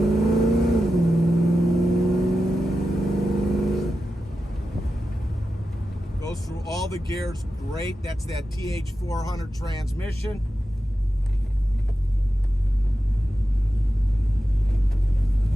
Through all the gears, great. That's that TH400 transmission.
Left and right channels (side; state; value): both; normal; correlation 0.91